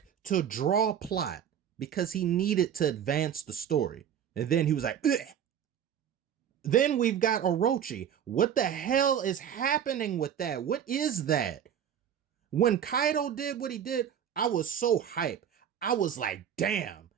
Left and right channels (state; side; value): quieter; left; 9.0 dB